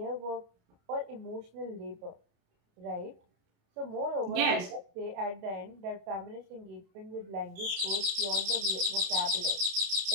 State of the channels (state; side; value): late; left; 30 ms